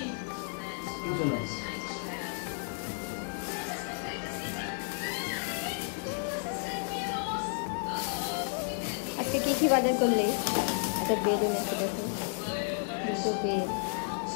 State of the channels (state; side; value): silent; right; 56 dB below the other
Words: আজকে কি বাজার করলে? একটা বেড এনেছে, দেখো, দুটো বেড।